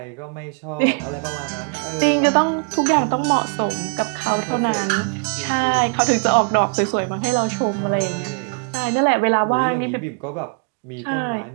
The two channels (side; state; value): left; quieter; 38.5 dB